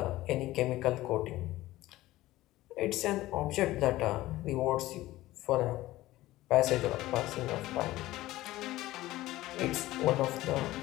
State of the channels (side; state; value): right; quieter; 16.8 dB